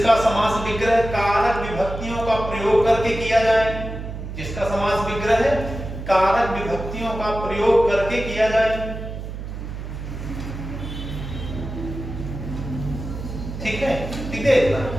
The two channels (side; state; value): right; noise; hum, 8 dB below the sound